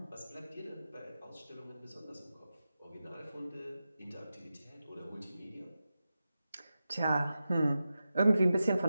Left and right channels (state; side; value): inverted; both; correlation -0.92